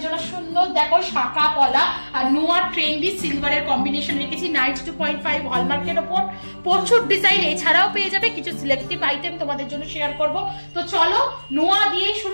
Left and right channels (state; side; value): inverted; both; correlation -1.00